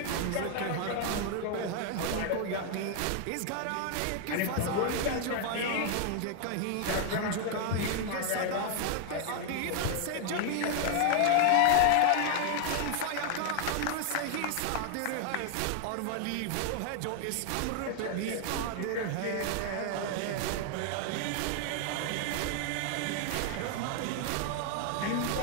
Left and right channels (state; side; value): different; both; correlation 0.00